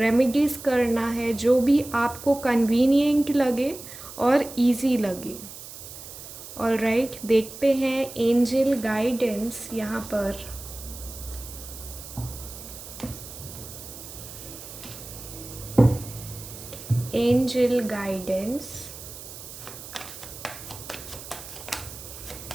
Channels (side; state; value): right; noise; hiss, 13 dB below the sound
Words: करना है, जो भी आपको कन्वीनियंट लगे और इजी लगे। ऑलराइट, देखते हैं एंजल गाइडेंस यहाँ पर। Angel guidance,